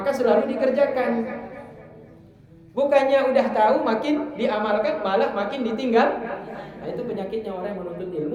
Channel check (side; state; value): both; identical; correlation 1.00